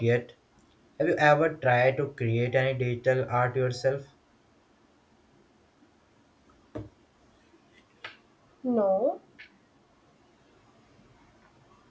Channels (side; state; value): both; identical; correlation 1.00